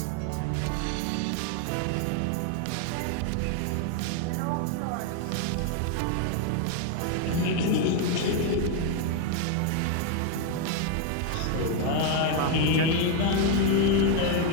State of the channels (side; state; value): both; different; correlation 0.01